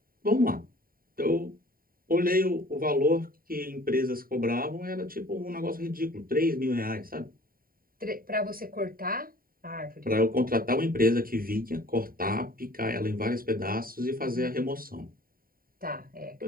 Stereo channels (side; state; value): left; late; 0.42 ms